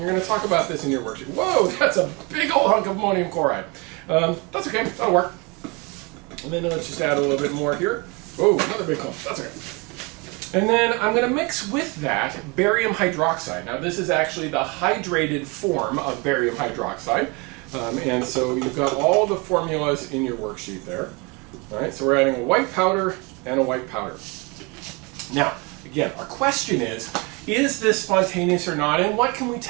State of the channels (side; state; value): left; quieter; 28.6 dB